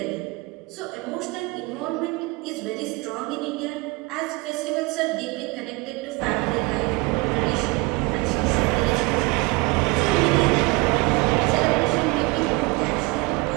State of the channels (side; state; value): left; quieter; 25.2 dB